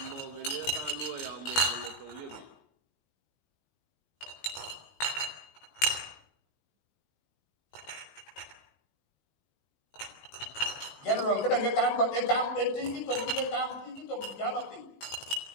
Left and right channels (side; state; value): right; late; 17 ms